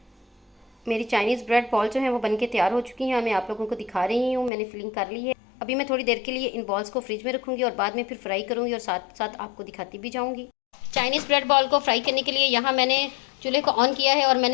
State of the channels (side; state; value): right; drops out; at 4.5 s